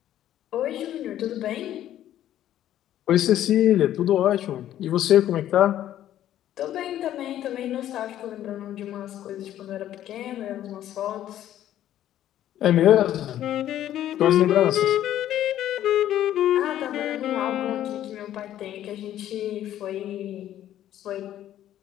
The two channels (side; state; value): right; quieter; 12.1 dB